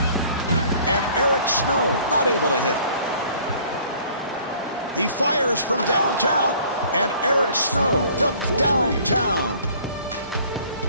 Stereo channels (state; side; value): inverted; both; correlation -0.54